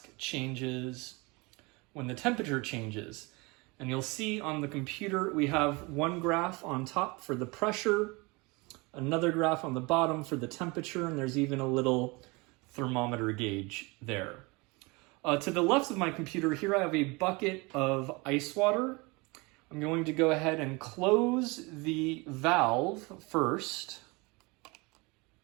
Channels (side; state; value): left; quieter; 26.4 dB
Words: changes when the temperature changes. And you'll see on the computer we have one graph on top for the pressure, another graph on the bottom for the temperature, and there's even a little thermometer gauge there. To the left of my computer here I have a bucket of ice water. I'm going to go ahead and close the valve first